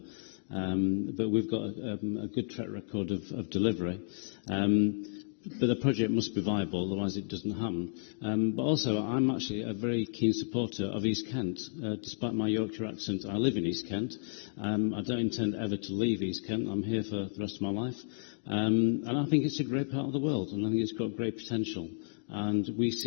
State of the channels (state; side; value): silent; right; digital silence